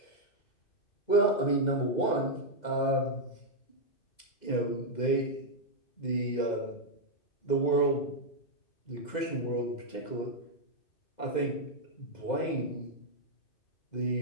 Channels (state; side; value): late; right; 2.1 ms